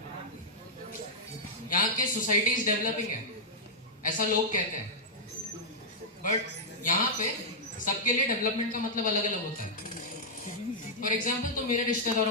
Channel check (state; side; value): normal; both; correlation -0.07